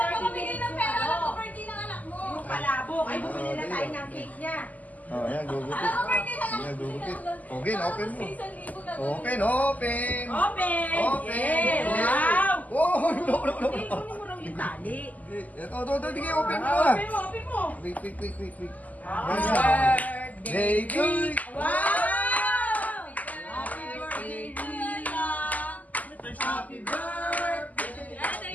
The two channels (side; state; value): right; late; 0.078 ms